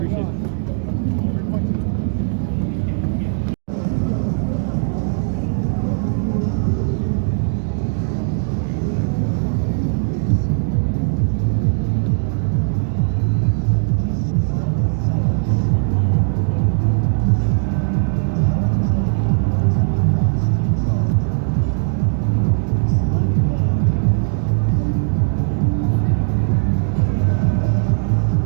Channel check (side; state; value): left; silent; digital silence